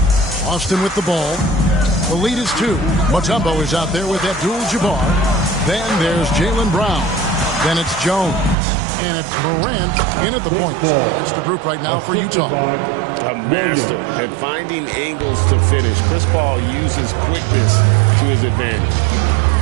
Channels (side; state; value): left; drops out; at 8.6 s